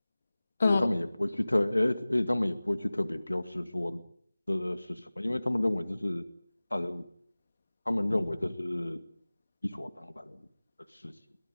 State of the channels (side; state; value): both; inverted; correlation -0.98